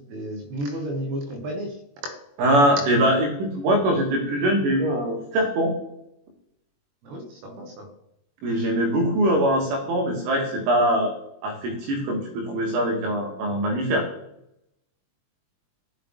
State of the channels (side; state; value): left; late; 21 ms